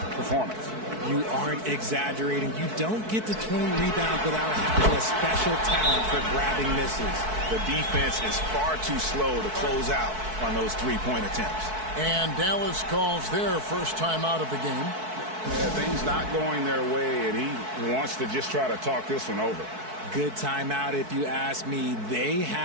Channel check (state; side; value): late; left; 4.6 ms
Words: performance. You aren't exaggerating. You don't get to 20 rebounds without having a special talent for grabbing misses. The defense is far too slow to close out on those 3-point attempts. And Dallas calls their first time out of the game. Yeah, things not going their way, and he wants to just try to talk this one over. Good timeout if you ask me. They